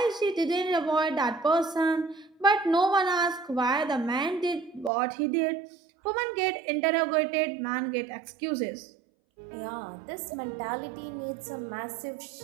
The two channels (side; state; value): left; drops out; at 4.9 s